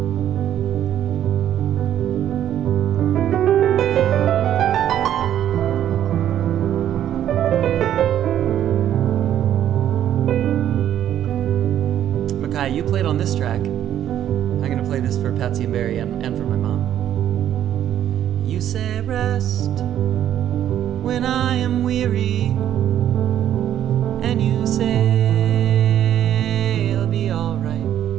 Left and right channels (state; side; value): quieter; left; 10.9 dB